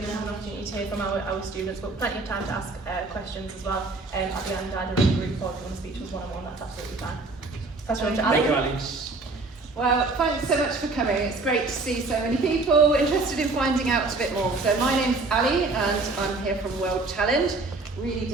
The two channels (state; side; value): quieter; left; 3.5 dB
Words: to have an opportunity to hear from our students, but plenty of time to ask questions as well at the end, either in a group or if you want to speak to us one-on-one. That's absolutely fine. Pass you on to Ali. Thank you, Ali. Well, thanks so much for coming. It's great to see so many people interested in finding out a bit more. So my name's Ali and I'm here from World Challenge. Really